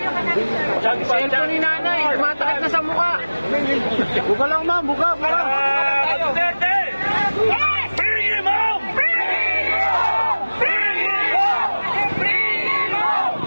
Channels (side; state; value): both; inverted; correlation -1.00